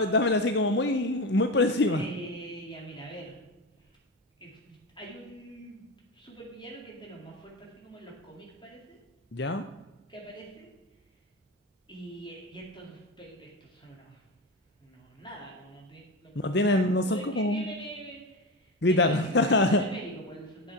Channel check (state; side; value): normal; both; correlation 0.20